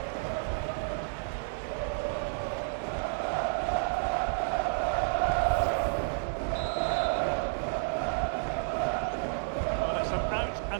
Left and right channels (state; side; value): silent; left; 57 dB below the other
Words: Well, it's an